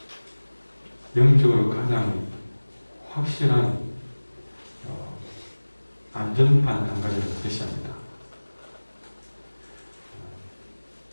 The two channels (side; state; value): both; inverted; correlation -1.00